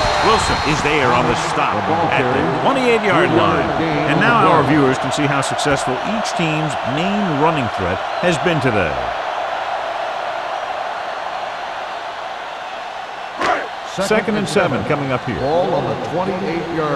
Wilson is there on the stop at the 28-yard line. And now our viewers can see how successful each team's main running threat has been today. Second and 7 coming up here. Ball on the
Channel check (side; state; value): both; identical; correlation 1.00